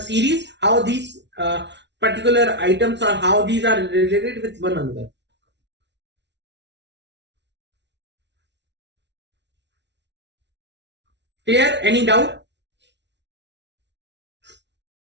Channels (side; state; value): left; late; 0.51 ms